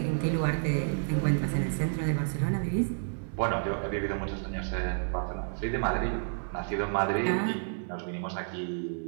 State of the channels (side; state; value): left; silent; digital silence